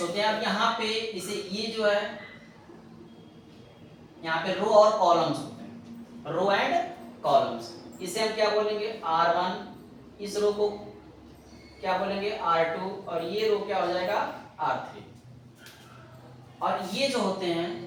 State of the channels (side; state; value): both; identical; correlation 1.00